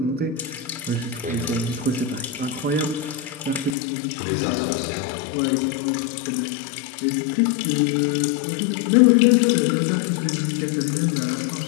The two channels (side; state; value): right; drops out; at 3.7 s